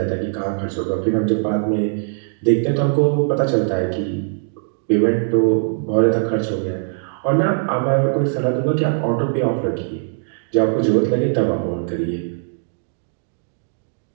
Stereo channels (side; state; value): left; silent; digital silence